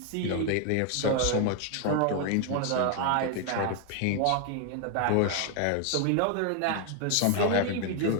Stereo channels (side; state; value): both; different; correlation 0.00